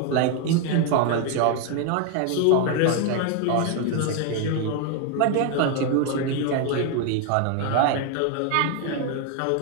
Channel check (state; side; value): different; both; correlation 0.01